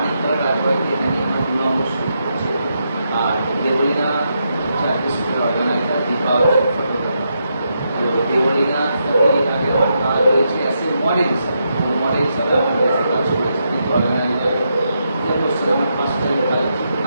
রাজবাড়িতে এখানে আমার 2 নম্বর শুট করছি, আর দেবলীনা হচ্ছে একটা শুটের অর্গানাইজার, দীপা হচ্ছে ফটোগ্রাফার। তো দেবলীনার সাথে আগে কথা রয়েছে অ্যাজ এ মডেল হিসাবে, মডেল হিসাবে আমার বেশি কাজ করেছি, কিন্তু অর্গানাইজার যে করছে আমি ফার্স্ট টাইম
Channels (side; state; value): both; inverted; correlation -0.82